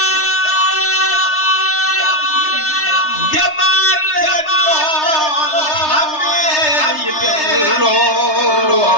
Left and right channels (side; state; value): right; late; 3.3 ms